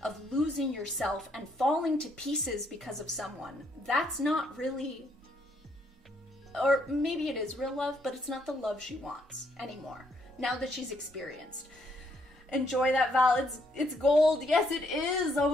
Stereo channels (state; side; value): normal; both; correlation 0.71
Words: losing yourself and falling to pieces because of someone, that's not really, or maybe it is real love, but it's not the love she wants anymore, now that she's experienced. Enjoy that, Val. It's gold. Yes, it is. Oh